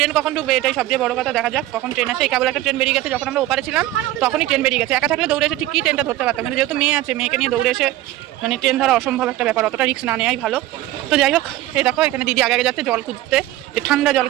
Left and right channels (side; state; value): left; quieter; 15.7 dB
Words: কখন ঢুকবে এটাই সবচেয়ে বড় কথা। দেখা যাক কখন ট্রেন আসে। এই কেবল একটা ট্রেন বেরিয়ে গেছে, যখন আমরা ওপারে ছিলাম তখনই ট্রেন বেরিয়ে গেছে। একা থাকলে দৌড়ে এসে ঠিকই ট্রেনটা ধরতে পারতাম, কিন্তু যেহেতু মেয়ে আছে, মেয়েকে নিয়ে দৌড়ে এসে মানে ট্রেন ধরা অসম্ভব একটা ব্যাপার, অতটা রিস্ক না নেওয়াই ভালো। তো যাই হোক, এই দেখো এখানে দিদি আগে যাচ্ছে জল খুঁজতে, যে ঠান্ডা জল